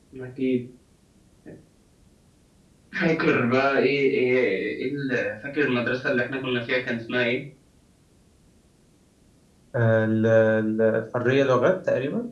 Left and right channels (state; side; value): identical; both; correlation 1.00